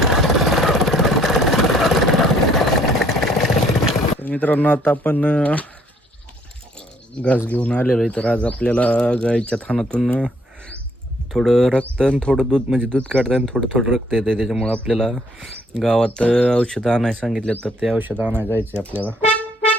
मित्रांनो, आता आपण घास घेऊन आलेलो आहे. तर आज आपल्याला गाईच्या थानातून थोडं रक्त आणि थोडं दूध, म्हणजे दूध काढतं आणि थोडं रक्त येतं. त्याच्यामुळं आपल्याला गावात औषधं आणायला सांगितलं, तर ते औषधं आणायला जायचं आहे आपल्याला.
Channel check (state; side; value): normal; both; correlation 0.64